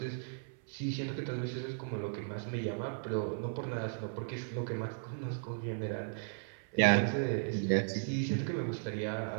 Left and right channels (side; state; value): left; silent; 54 dB below the other